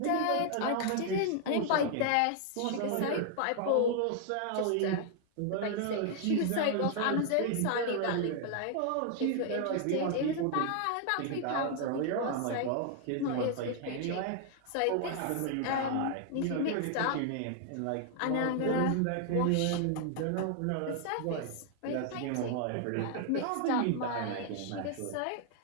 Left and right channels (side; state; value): both; different; correlation 0.00